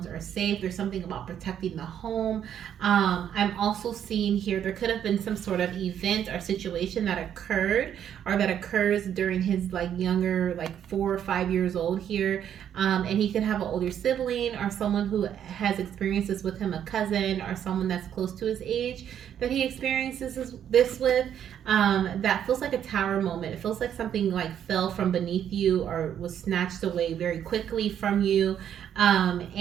are safe. There's something about protecting the home. I'm also seeing here there could have been some sort of event or situation that occurred or that occurs during his like younger, like 4 or 5 years old here. And he could have an older sibling or someone who has experienced this with him, a cousin or someone that's close to his age that he experiences this with. That feels like a tower moment. It feels like something like fell from beneath you or was snatched away very quickly from you.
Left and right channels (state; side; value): quieter; left; 9.5 dB